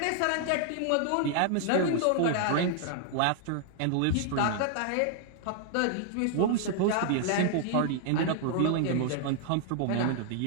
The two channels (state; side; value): different; both; correlation -0.01